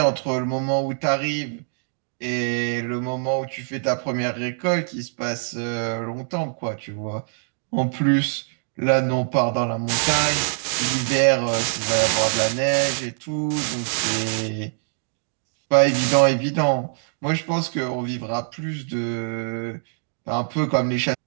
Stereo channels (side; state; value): left; silent; digital silence